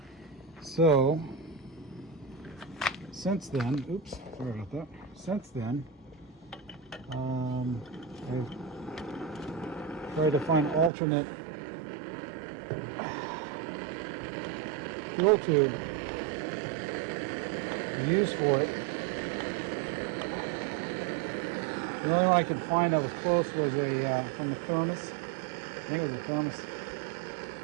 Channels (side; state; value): left; drops out; at 10.9 s